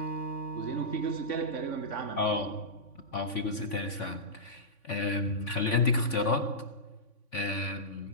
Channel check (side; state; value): right; late; 3.5 ms